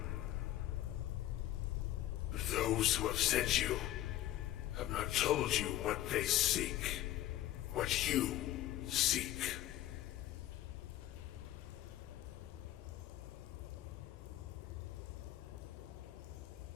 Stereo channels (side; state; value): right; quieter; 13.8 dB